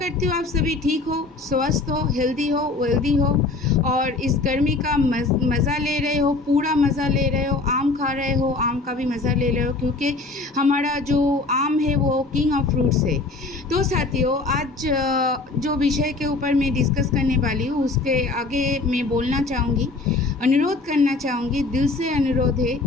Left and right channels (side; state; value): right; quieter; 3.5 dB